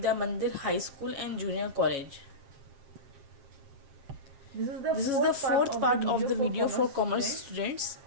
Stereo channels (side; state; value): left; late; 7.2 ms